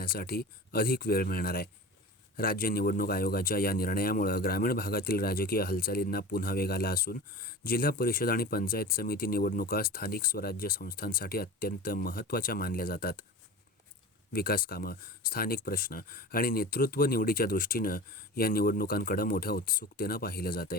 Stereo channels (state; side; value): normal; both; correlation 0.34